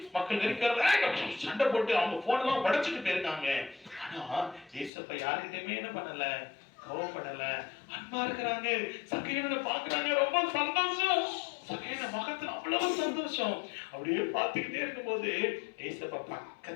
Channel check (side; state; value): right; drops out; at 4.9 s